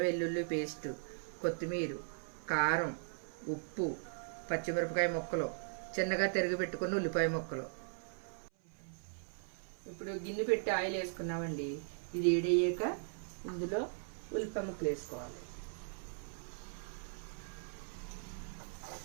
వెల్లుల్లి పేస్టు, కొత్తిమీర, కారం, ఉప్పు, పచ్చిమిరపకాయ ముక్కలు, చిన్నగా తరిగి పెట్టుకున్న ఉల్లిపాయ ముక్కలు. ఇప్పుడు గిన్నె పెట్టి ఆయిల్ వేసుకున్నామండి. ఇది వేడయ్యాక ఇందులో ఉల్లిపాయ ముక్కలు వేసుకోవాలి.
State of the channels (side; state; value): left; silent; 52 dB below the other